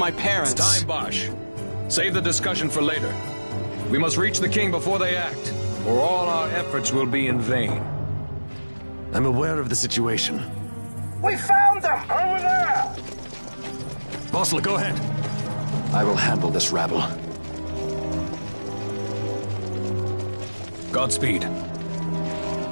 parents. It's time, Bosch. Save the discussion for later. We must reach the king before they act, or all our efforts will be in vain. I'm aware of the situation. We found them! Over there! Bossler, go ahead. I will handle this rabble. Godspeed.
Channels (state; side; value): inverted; both; correlation -1.00